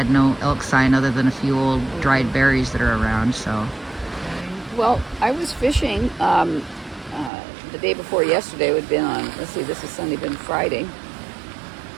no elk sign other than a few old dried berries that are around, so. Well, I was fishing the day before yesterday. It would have been on, let's see, this is Sunday, been Friday.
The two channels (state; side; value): drops out; left; at 7.3 s